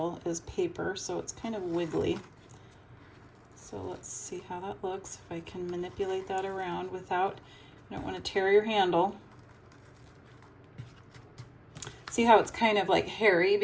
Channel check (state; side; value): identical; both; correlation 1.00